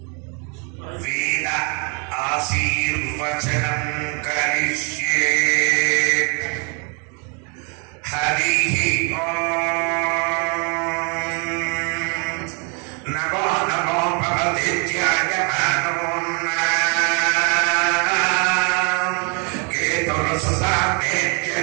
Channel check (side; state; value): left; quieter; 35.4 dB